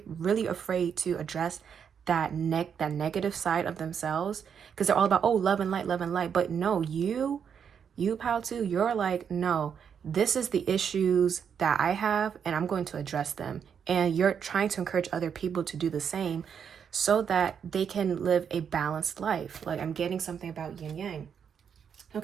afraid to address that negative side of themselves, because they're all about, oh, love and light. But no, you pal too, you're like, no, this is the issues that I have and I'm going to address them. And you're trying to encourage other people to do the same so that they can live a balanced life. Like, I'm getting something about yin yang.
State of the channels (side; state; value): left; quieter; 7.4 dB